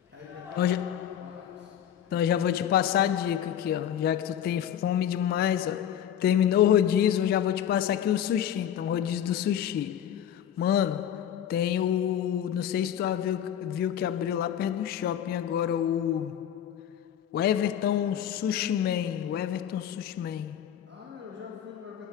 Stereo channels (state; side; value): quieter; right; 9.9 dB